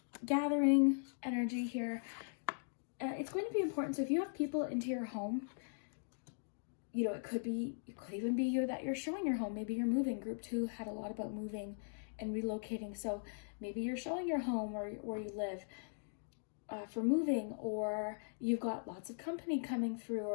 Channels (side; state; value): right; silent; digital silence